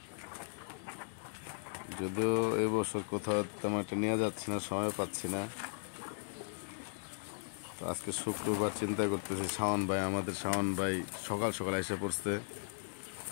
যদিও এবছর কোথাও তেমন একটা নিয়ে যাচ্ছি না, সময় পাচ্ছি না। তো আজকে শুক্রবার চিন্তা করতেছি, আমাদের শাওন ভাই সকাল সকাল এসে পড়ছে।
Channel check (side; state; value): right; silent; digital silence